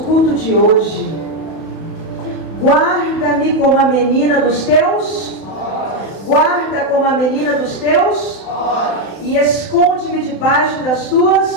culto de hoje: guarda-me como a menina dos teus olhos. Guarda como a menina dos teus olhos. E esconde-me debaixo das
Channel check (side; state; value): right; late; 31 ms